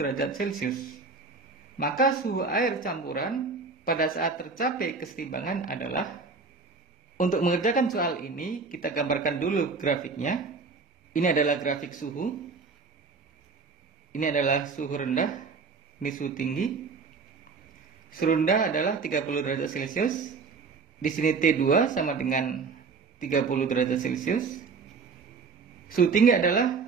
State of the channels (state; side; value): quieter; left; 4.7 dB